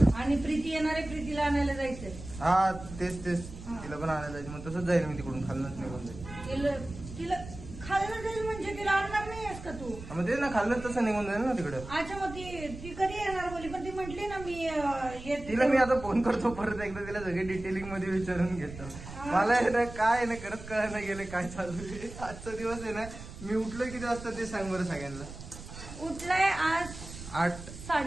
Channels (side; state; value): right; noise; rumble, 13 dB below the sound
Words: आणि प्रीती येणारे, प्रीतीला आणायला जायचंय. हा तेच हा. तिला पण आणायला जायचं. मग तसंच जाईल मी तिकडून खाल्लंच निघून जाईल. तिला खायला जाईल म्हणजे तिला आणणार नाहीयेस का तू? मग ते ना खाल्लं तसं निघून जाईल ना तिकडं. अच्छा मग ती कधी येणार बोली? पण ती म्हटली ना मी येते. तिला मी आता फोन करतो परत एकदा. तिला सगळे डिटेलिंग मध्ये विचारून घेतो. मला आहे ना काय ना खरंच कळायला गेले काय चालू आहे. आजचा दिवस आहे ना. मी उठलोय किती वाजता ते सांग बरं सगळ्यांना. उठलाय आज